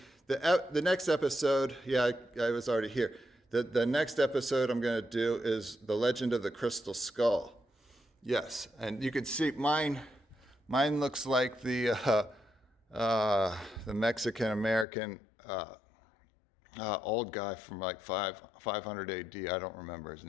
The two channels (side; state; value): right; drops out; at 14.9 s